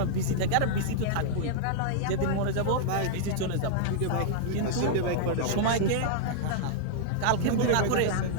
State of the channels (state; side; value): different; both; correlation -0.01